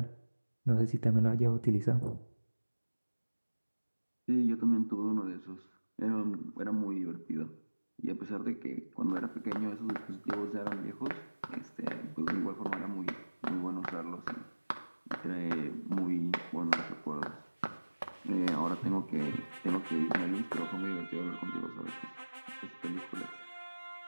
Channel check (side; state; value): both; inverted; correlation -1.00